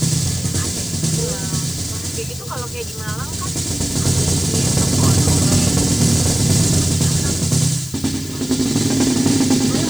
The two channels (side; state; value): left; noise; hiss, 15 dB below the sound